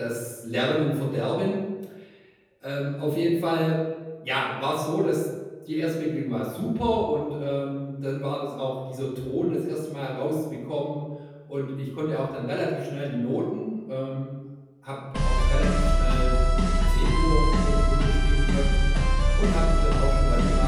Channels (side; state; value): both; identical; correlation 1.00